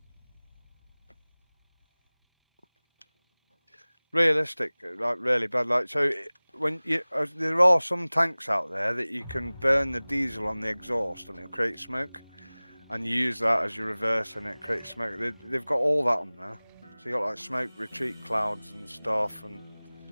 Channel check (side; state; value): both; inverted; correlation -1.00